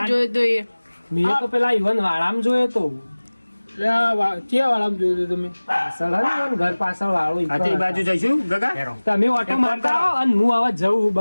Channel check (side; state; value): both; inverted; correlation -1.00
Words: જોઈ દઈએ મેં તો પેલા ઈવન વાળામ જોયો તો ક્યાં વાળામ જોયું તમે પાછળ હે ને ઈવન ઘર પાછળ વાળો ઈ આ તે બાજુ જઈશું ગગા હેરો. તમે ઓટો મારતા રહો અને હું હવે જવું